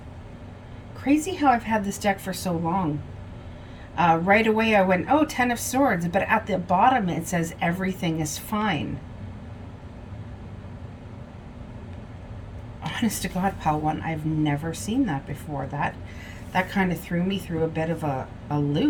Crazy how I've had this deck for so long. Right away I went, oh, 10 of Swords, but at the bottom it says everything is fine. Honest to God, pal one, I've never seen that before. That kind of threw me through a bit of a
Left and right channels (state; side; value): identical; both; correlation 1.00